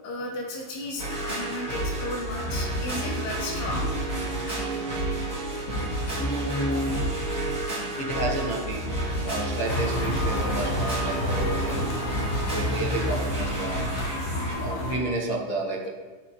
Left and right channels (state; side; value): late; right; 15 ms